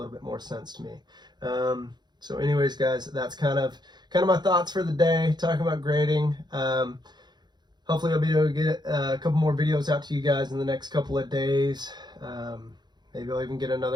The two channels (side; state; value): left; late; 0.21 ms